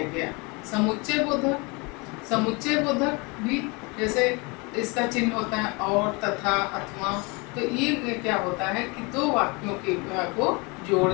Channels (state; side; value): quieter; right; 28.5 dB